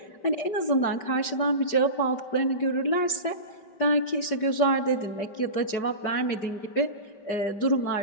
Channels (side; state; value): right; late; 5.1 ms